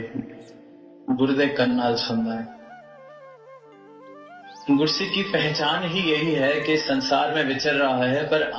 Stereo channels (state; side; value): identical; both; correlation 1.00